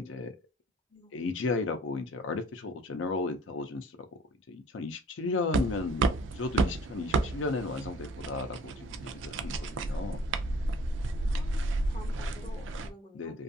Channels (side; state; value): both; normal; correlation 0.52